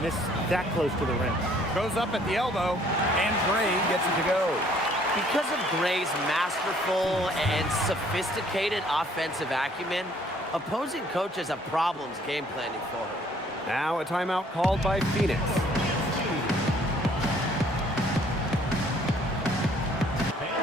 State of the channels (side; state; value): both; normal; correlation 0.60